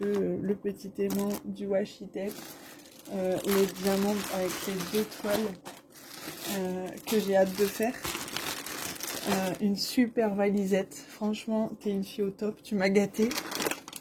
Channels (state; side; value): identical; both; correlation 1.00